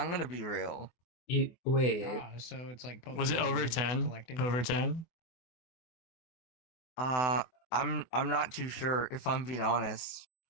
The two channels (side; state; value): right; late; 24 ms